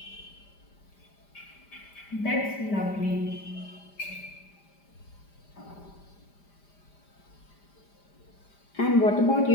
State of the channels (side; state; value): right; late; 5.0 ms